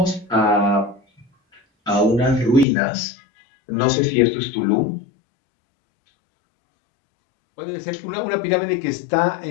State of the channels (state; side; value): drops out; right; at 2.7 s